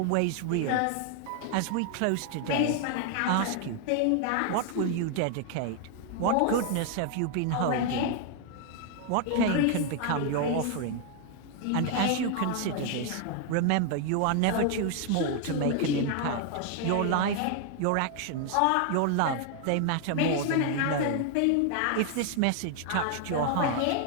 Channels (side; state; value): both; different; correlation 0.00